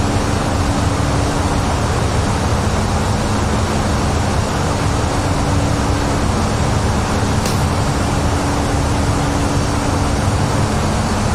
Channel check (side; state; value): both; identical; correlation 1.00